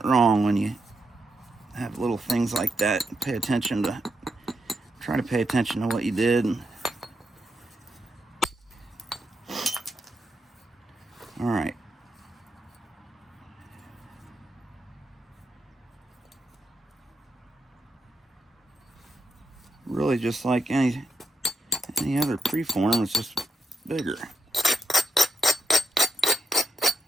wrong when you have little things like that. Try to pay attention to what you did. All right. Really just like any other preform, it's just bigger.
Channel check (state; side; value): normal; both; correlation 0.83